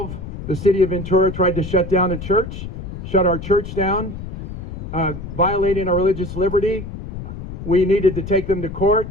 the city of Ventura tried to shut down a church, shut our church down, violating our religious liberty. We needed to take them to court.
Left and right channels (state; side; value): noise; left; rumble, 9 dB below the sound